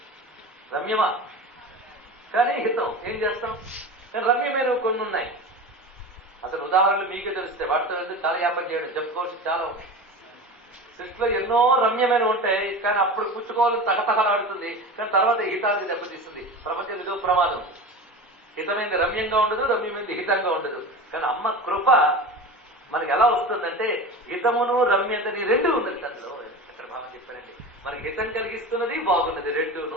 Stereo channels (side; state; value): both; normal; correlation 0.30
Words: రమ్యమా? కానీ హితం. ఏం చేస్తాం? కానీ రమ్యమైన కొన్ని ఉన్నాయి. అసలు ఉదాహరణలు మీకే తెలిస్తే వాటితో ఎందుకు చాలా వ్యాపారం చేయడం చెప్పుకోవచ్చు చాలా ఉన్నాయి. సృష్టిలో ఎన్నో రమ్యమైన ఉంటాయి, కానీ అప్పుడు పుచ్చుకోవాలని తగతగలాడుతుంది, కానీ తర్వాత హితానికి దెబ్బతీస్తుంది. ప్రపంచం ఇదో ప్రమాదం. హితమైంది రమ్యంగా ఉండదు, రమ్యమైంది హితంగా ఉండదు. కానీ అమ్మ కృప మనకి ఎలా వస్తుందంటే హితమును రమ్యతని రెండు ఉన్నది అందులో. ఎక్కడ భావం చెప్పారండి, మనకి హితం కలిగిస్తున్నది బాగున్నది,